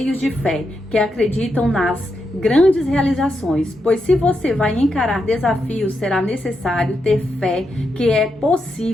de fé, que acreditam nas grandes realizações, pois se você vai encarar desafios, será necessário ter fé que é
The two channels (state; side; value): normal; both; correlation 0.84